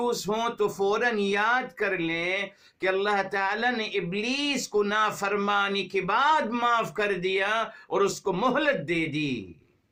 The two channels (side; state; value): both; identical; correlation 1.00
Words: ہوں تو فوراً یاد کر لیں کہ اللہ تعالیٰ نے ابلیس کو نافرمانی کے بعد معاف کر دیا اور اس کو مہلت دے دی.